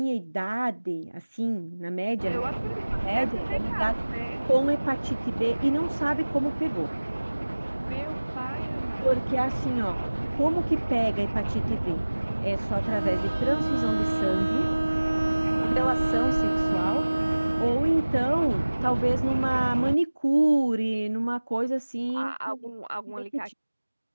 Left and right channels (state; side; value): inverted; both; correlation -1.00